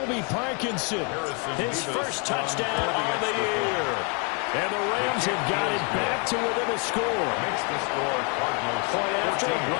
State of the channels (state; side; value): quieter; right; 34.8 dB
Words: Parkinson, his first touchdown of the year. And the Rams have got it back to within a score. Makes the score Cardinals Point after,